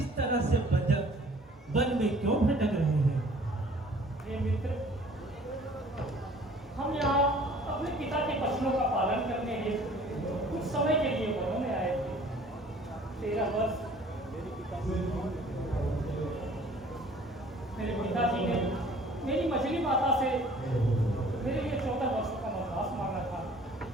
तरह से बजट वन में क्यों भटक रहे हैं? ये मित्र, हम यहाँ अपने पिता के वचनों का पालन करने हेतु कुछ समय के लिए वनों में आए थे। 13 वर्ष मेरे पिताजी ने मेरी मछली माता से मेरे लिए 14 वर्षों का वनवास मांगा था।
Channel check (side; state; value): both; normal; correlation 0.52